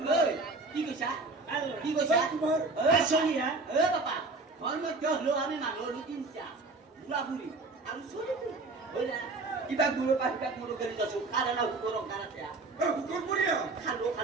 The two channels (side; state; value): left; quieter; 3.5 dB